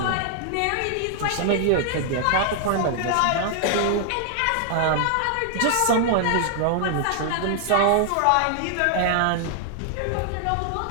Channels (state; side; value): different; both; correlation 0.00